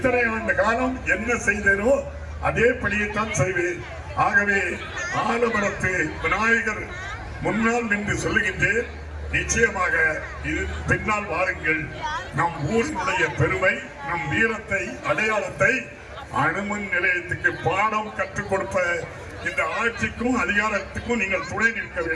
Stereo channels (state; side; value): identical; both; correlation 1.00